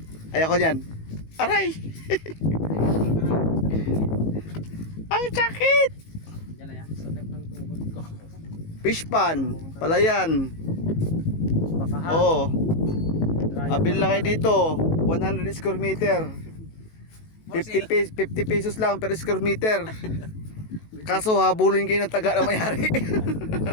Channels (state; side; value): late; right; 18 ms